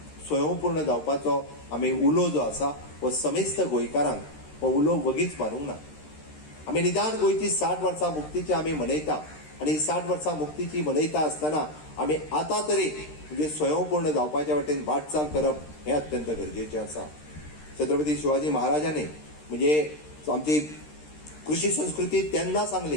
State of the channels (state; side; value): late; right; 13 ms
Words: स्वयंपूर्ण जावपाचो आमी उलो जो आसा हो समेस्त गोंयकारांक हो उलो वगीच मारूंक ना. आमी निदान गोंयची 60 वर्सां मुक्तीची आमी मनयता आनी 60 वर्सां मुक्तीची मनयता आसतना आमी आतां तरी म्हणजे स्वयंपूर्ण जावपाच्या वाटेन वाटचाल करप हें अत्यंत गरजेचें आसा. छत्रपती शिवाजी महाराजांनी म्हणजे आमची कृशी संस्कृती तेन्ना